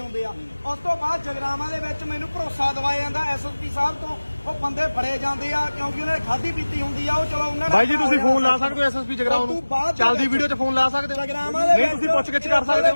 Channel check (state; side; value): inverted; both; correlation -1.00